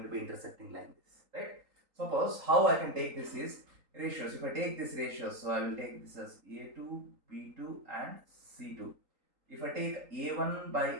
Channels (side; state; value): left; late; 3.8 ms